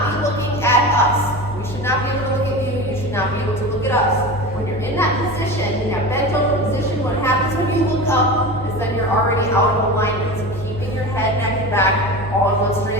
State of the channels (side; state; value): both; normal; correlation 0.29